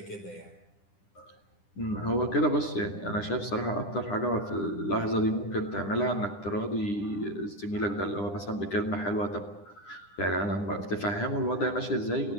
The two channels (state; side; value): late; right; 10 ms